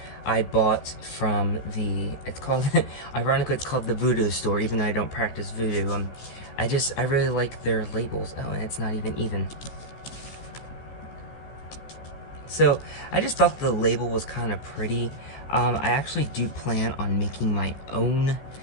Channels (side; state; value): right; late; 15 ms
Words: I bought from the, it's called, ironically it's called the Voodoo Store, even though I don't practice voodoo. I really like their labels. Oh, and it's not even. So, I just thought the label was kind of pretty. I actually do plan on making my own